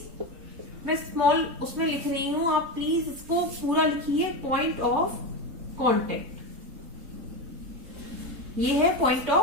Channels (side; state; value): left; late; 3.8 ms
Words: मैं स्मॉल उसमें लिख रही हूं, आप प्लीज इसको पूरा लिखिए, पॉइंट ऑफ कांटेक्ट। ये है पॉइंट